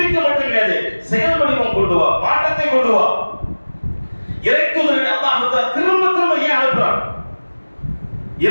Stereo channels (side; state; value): both; inverted; correlation -1.00